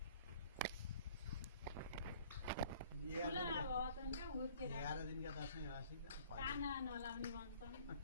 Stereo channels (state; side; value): inverted; both; correlation -0.53